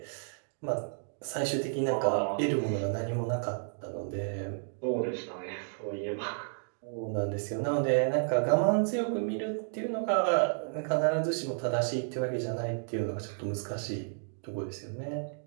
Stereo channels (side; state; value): left; silent; digital silence